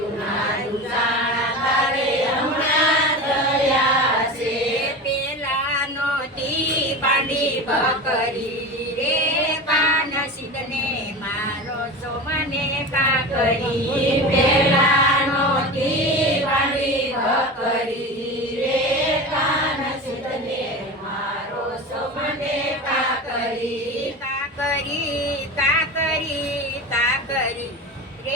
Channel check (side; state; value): both; normal; correlation 0.28